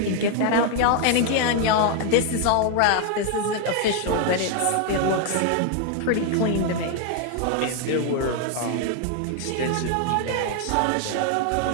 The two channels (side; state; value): both; different; correlation 0.00